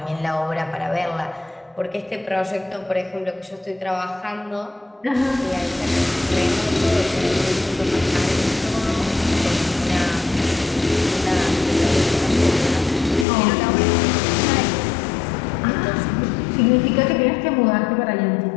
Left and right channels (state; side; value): drops out; right; at 13.2 s